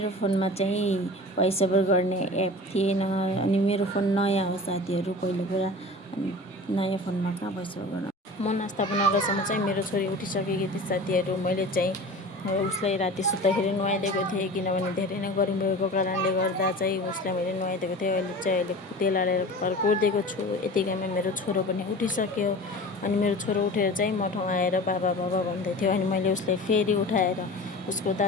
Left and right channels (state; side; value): normal; both; correlation 0.37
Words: फोनमा चाहिँ भोइस ओभर गर्ने एप थिएन अनि मेरो फोन नयाँ हो साथीहरू, पहिलो कुरा। अनि नयाँ फोनमा कहाँ भोइस ओभर गर्न। म नास्ता बनाउँदासम्म चाहिँ मेरो छोरी उठिसकेकी थिए साथीहरू। मैले चाहिँ उसलाई राति सुत्दाखेरि नुहाइदिएको थिएँ, किनभने धेरै नै गर्मी भएको कारणले गर्दा चाहिँ उसलाई मैले नुहाइदिएको थिएँ। अहिले तेल हालेर कपाल कोरिदिएको छु। यतिकैमा मेरो छोरो पनि उठिसक्यो। अनि मेरो छोरो उठेर चाहिँ म ठाउँ आएर बाबा बाबा भन्दै थियो। अनि मैले उसलाई फेरि उठाएर उसको